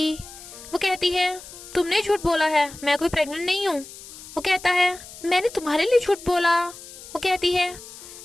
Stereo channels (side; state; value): left; noise; hiss, 16 dB below the sound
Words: वो कहती है, तुमने झूठ बोला है, मैं कोई प्रेग्नेंट नहीं हूँ। वो कहता है, मैंने तुम्हारे लिए झूठ बोला। वो कहती है,